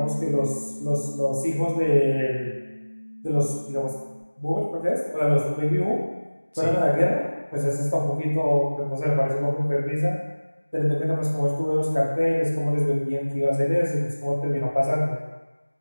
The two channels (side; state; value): both; inverted; correlation -1.00